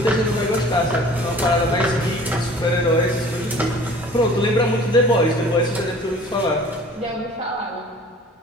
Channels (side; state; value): both; normal; correlation 0.48